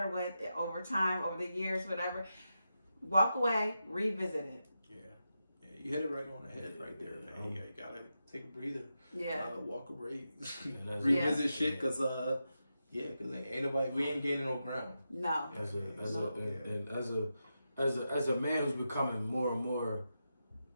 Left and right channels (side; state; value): both; inverted; correlation -0.88